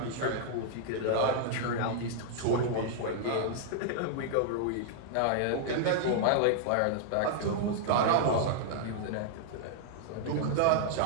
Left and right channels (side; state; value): both; different; correlation -0.01